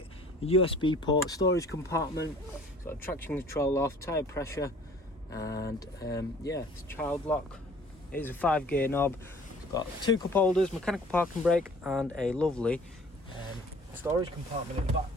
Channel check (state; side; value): normal; both; correlation 0.52